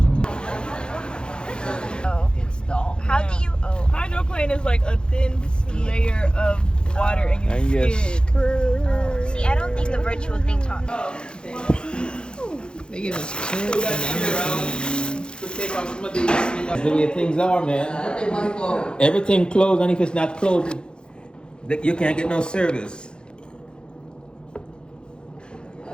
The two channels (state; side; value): late; right; 0.050 ms